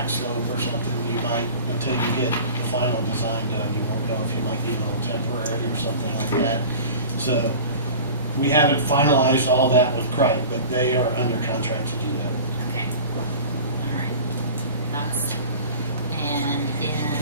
slope or something, you might, until you get the final design done, you won't know if you might need a little temporary or something like that. So, we haven't finalized all that with Cripe, but they are under contract to do that. okay, all right, and then,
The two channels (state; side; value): inverted; both; correlation -0.38